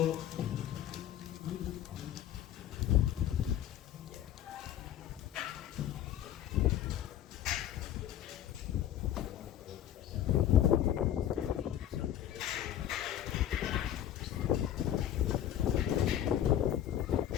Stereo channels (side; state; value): right; quieter; 11.2 dB